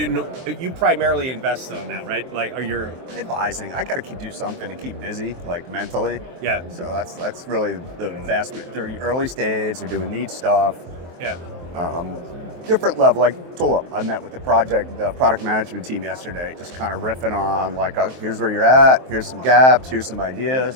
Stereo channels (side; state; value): left; late; 23 ms